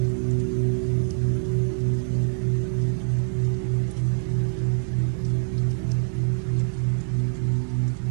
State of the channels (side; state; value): left; silent; digital silence